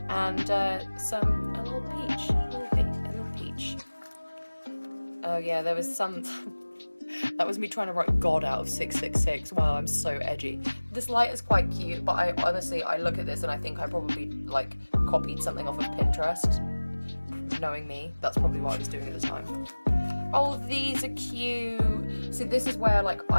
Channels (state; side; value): inverted; both; correlation -1.00